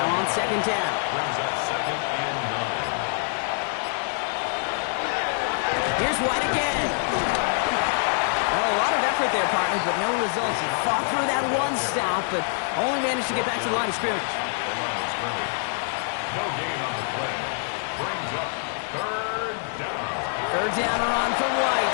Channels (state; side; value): silent; right; 61 dB below the other